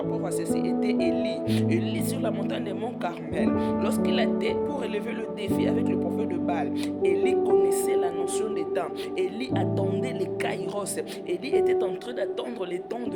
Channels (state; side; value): identical; both; correlation 1.00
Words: à ceci était Élie. Élie sur la montagne de Mont Carmel, lorsqu'il a été pour relever le défi avec le prophète de Baal, Élie connaissait la notion des temps. Élie attendait les kairos. Élie était en train d'attendre les temps